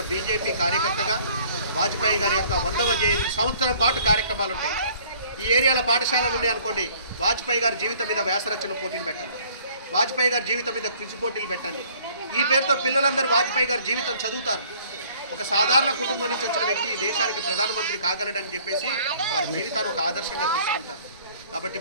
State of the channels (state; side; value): inverted; both; correlation -0.56